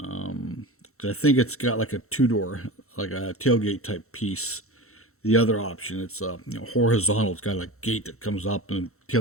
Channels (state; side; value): late; right; 0.63 ms